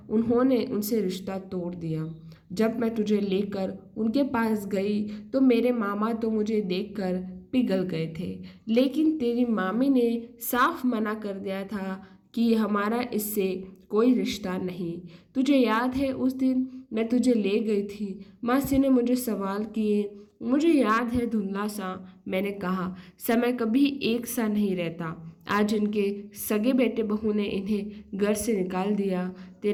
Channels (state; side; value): identical; both; correlation 1.00